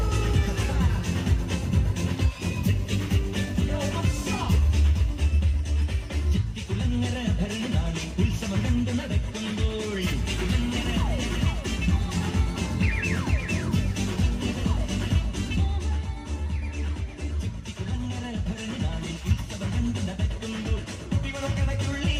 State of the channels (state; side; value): identical; both; correlation 1.00